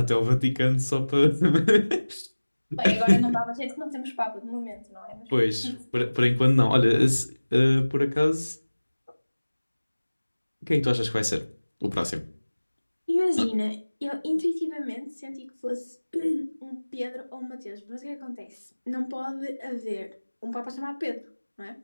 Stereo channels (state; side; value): inverted; both; correlation -1.00